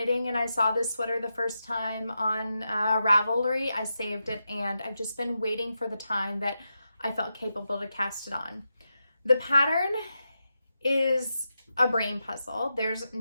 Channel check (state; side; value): inverted; both; correlation -0.88